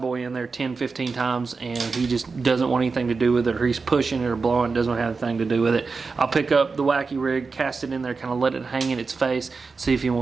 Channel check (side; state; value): left; quieter; 4.5 dB